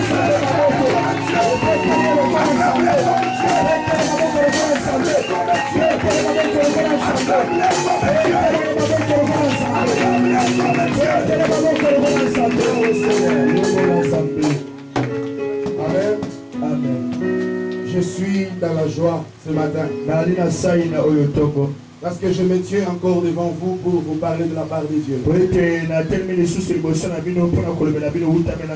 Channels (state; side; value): identical; both; correlation 1.00